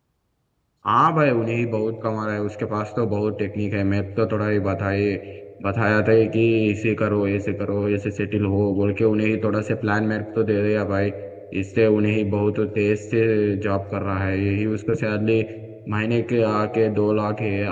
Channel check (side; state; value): both; identical; correlation 1.00